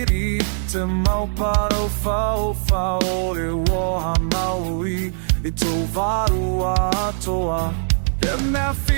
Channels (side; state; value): left; silent; digital silence